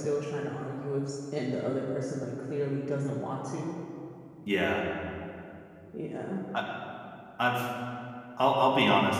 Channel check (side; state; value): both; identical; correlation 1.00